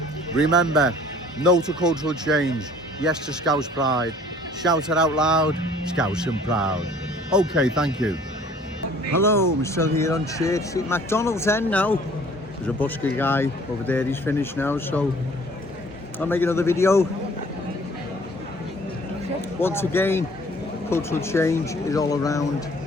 Remember, no to cultural change, yes to Scouse pride. Shout it out loud, Scouse and proud. Okay, thank you. Hello, I'm still here on Church Street, McDonald's end now. There's a busker guy over there, he's finished now, so I'll make another video. Once again, cultural change is all around.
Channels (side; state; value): both; normal; correlation 0.53